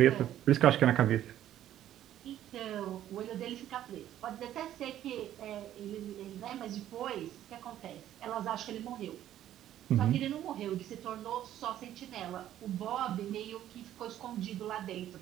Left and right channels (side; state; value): left; quieter; 12.0 dB